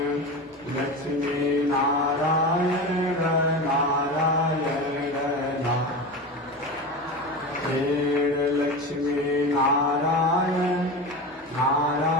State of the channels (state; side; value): normal; both; correlation 0.25